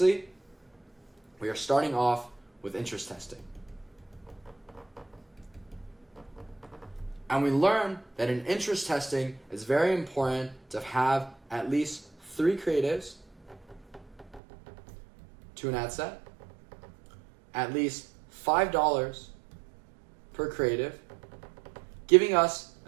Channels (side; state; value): left; drops out; at 14.4 s